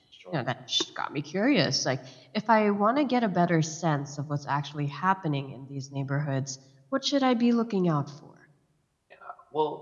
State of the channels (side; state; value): both; identical; correlation 1.00